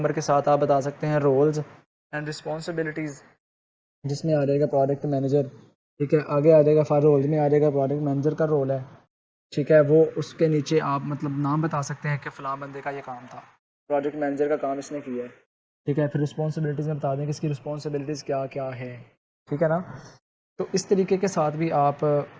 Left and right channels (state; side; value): identical; both; correlation 1.00